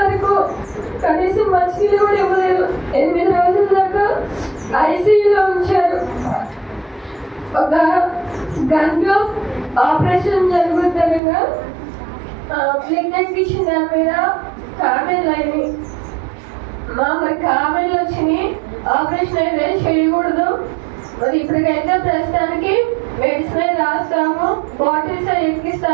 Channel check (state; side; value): drops out; left; at 11.2 s